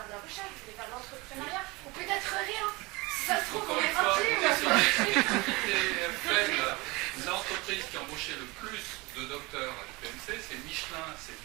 de la recherche? Vous voulez faire de l'entrepreneuriat? Ou peut-être rien. Si ça se trouve, on est parti. L'entreprise qui a embauché le plus de docteurs à l'UPMC, c'est Michelin, c'est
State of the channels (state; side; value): quieter; left; 24.1 dB